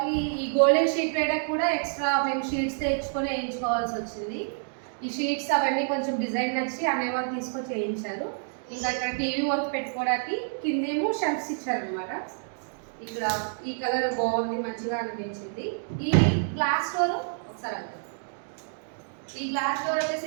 ఈ గోల్డెన్ షీట్ వేయడానికి కూడా ఎక్స్ట్రా మేము షీట్స్ తెచ్చుకొని వేయించుకోవాల్సి వచ్చింది. ఈ షీట్స్ అవన్నీ కొంచెం డిజైన్ నచ్చి అనేవాళ్ళు తీసుకొచ్చి వేయించారు. ఇంకా ఇక్కడ టీవీ వర్క్ పెట్టుకోవడానికి కిందేమో షెల్ఫ్స్ ఇచ్చారనమాట. ఇక్కడ ఈ కలర్ బాగుంది, మంచిగా అనిపించింది. ఈ గ్లాస్ డోర్ ఒకసారి అంటారు, ఈ గ్లాస్ డోర్ వచ్చేసి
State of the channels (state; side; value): silent; left; digital silence